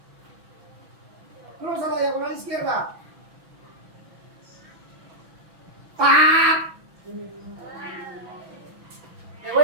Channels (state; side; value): late; left; 6.0 ms